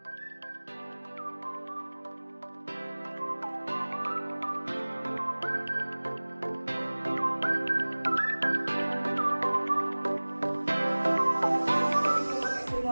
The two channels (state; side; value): inverted; both; correlation -1.00